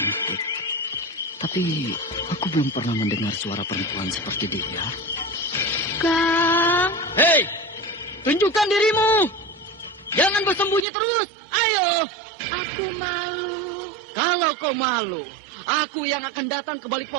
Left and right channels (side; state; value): left; drops out; at 10.9 s